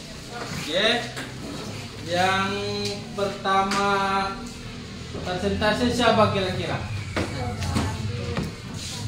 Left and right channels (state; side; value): identical; both; correlation 1.00